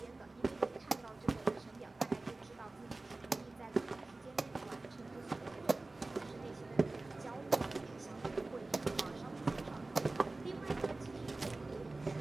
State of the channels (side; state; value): left; quieter; 3.1 dB